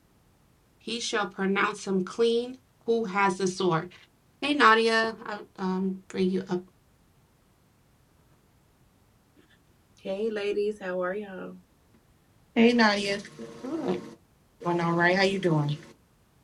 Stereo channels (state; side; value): identical; both; correlation 1.00